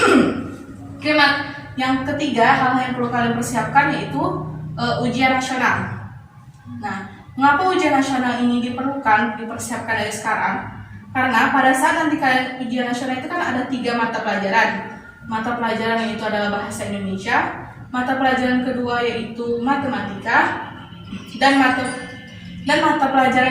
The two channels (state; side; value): identical; both; correlation 1.00